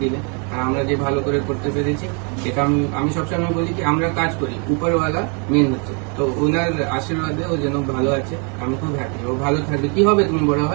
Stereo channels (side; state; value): left; quieter; 36.5 dB